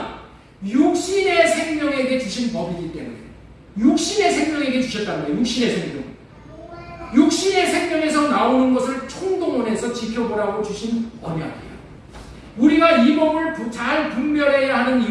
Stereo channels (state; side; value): identical; both; correlation 1.00